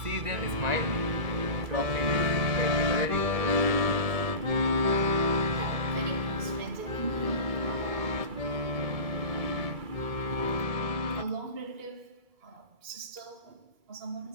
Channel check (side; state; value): left; late; 2.3 ms